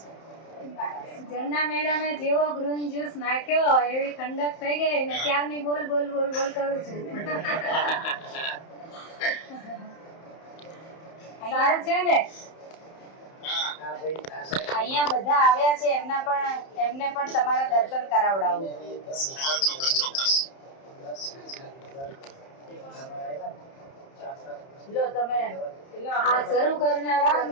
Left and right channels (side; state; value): right; late; 31 ms